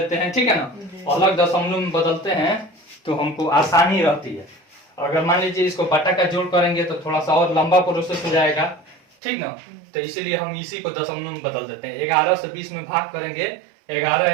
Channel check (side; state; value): left; drops out; at 9.0 s